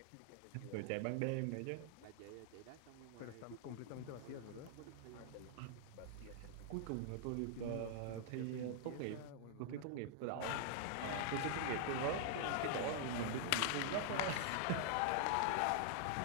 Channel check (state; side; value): different; both; correlation -0.01